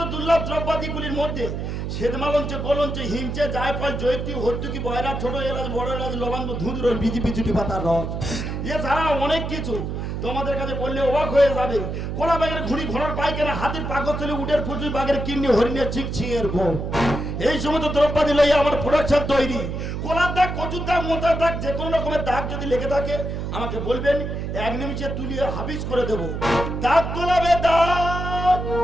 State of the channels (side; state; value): right; noise; hum, 4 dB below the sound